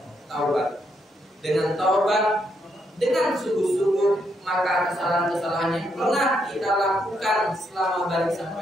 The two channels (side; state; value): both; normal; correlation 0.77